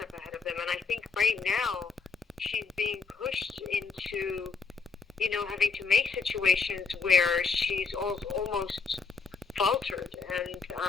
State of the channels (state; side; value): quieter; right; 5.1 dB